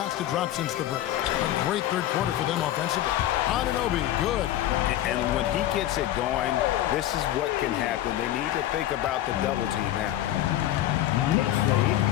to drop since the break. A great 3rd quarter for them offensively. Anunoby, good. And when he gets it going, this is what can happen. They need to think about the double team now.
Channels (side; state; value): right; quieter; 13.3 dB